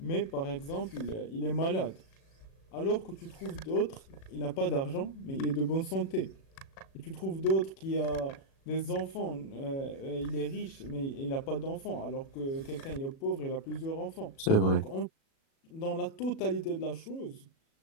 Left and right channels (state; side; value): late; right; 37 ms